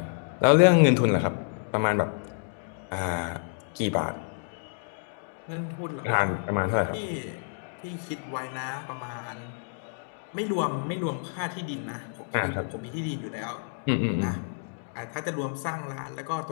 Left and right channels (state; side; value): silent; right; digital silence